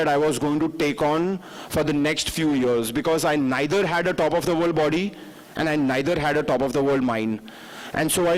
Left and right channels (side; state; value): both; identical; correlation 1.00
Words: I was going to take on for the next few years, because I neither had a top of the world body and I neither had a top of the world mind. And so I